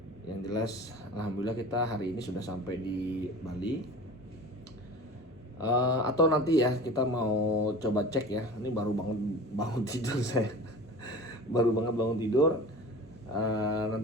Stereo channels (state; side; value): normal; both; correlation 0.38